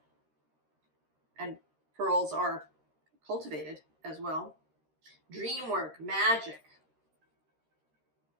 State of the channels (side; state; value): left; late; 13 ms